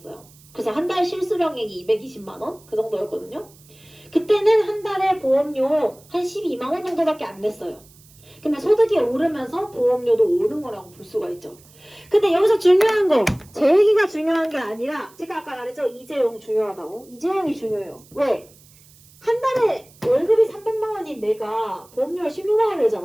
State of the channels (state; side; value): noise; right; hiss, 26 dB below the sound